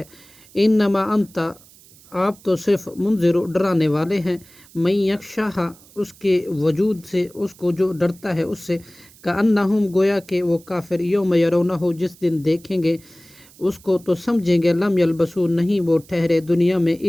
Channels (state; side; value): noise; right; hiss, 25 dB below the sound